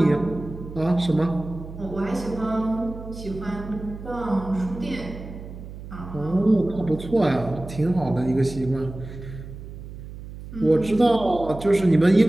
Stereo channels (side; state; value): right; noise; hum, 13 dB below the sound